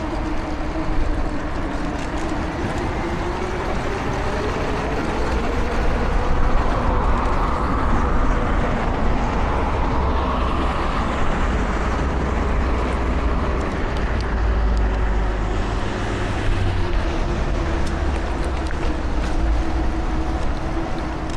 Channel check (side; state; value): both; identical; correlation 1.00